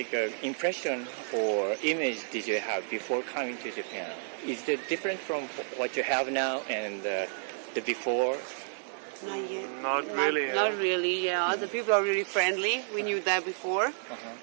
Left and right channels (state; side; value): silent; left; digital silence